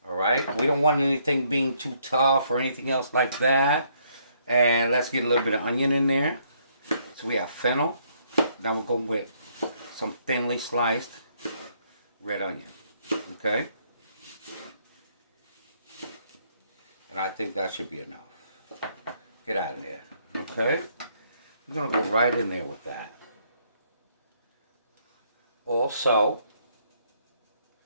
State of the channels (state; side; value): inverted; both; correlation -0.70